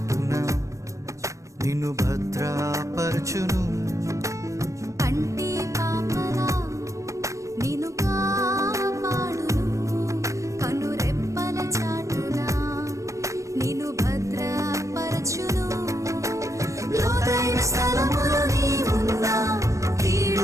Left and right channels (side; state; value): left; late; 0.15 ms